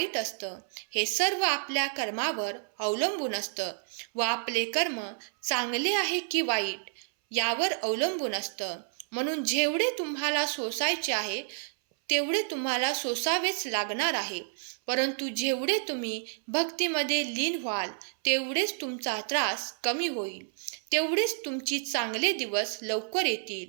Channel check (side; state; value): left; silent; 58 dB below the other